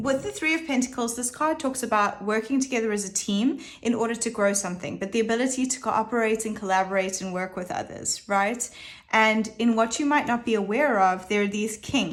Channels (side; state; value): both; identical; correlation 1.00